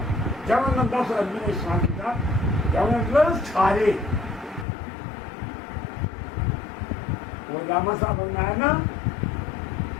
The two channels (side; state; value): right; drops out; at 4.7 s